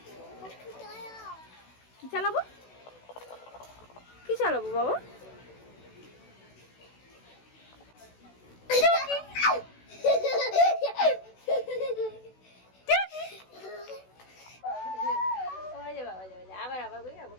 কি চালাবো, কি চালাবো বাবা? আবার আবার করি, আবার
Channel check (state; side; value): late; right; 16 ms